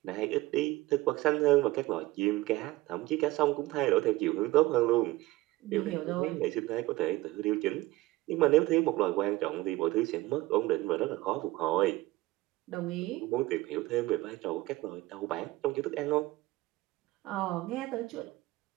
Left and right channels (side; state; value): left; quieter; 18.9 dB